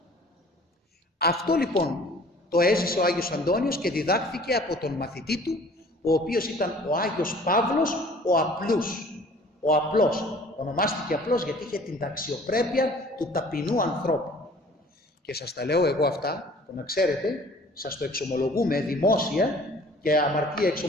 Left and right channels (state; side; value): normal; both; correlation 0.51